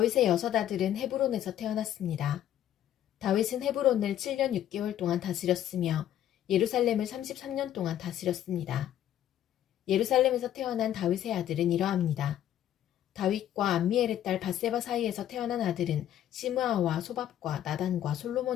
여섯 아들은 헤브론에서 태어났습니다. 다윗은 헤브론을 7년 6개월 동안 다스렸으며 예루살렘을 33년 동안 다스렸습니다. 예루살렘에서 태어난 다윗의 아들은 이러합니다. 다윗과 암미엘의 딸 밧세바 사이에서 태어난 아들은 시므아와 소밥과 나단과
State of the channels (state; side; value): quieter; right; 11.4 dB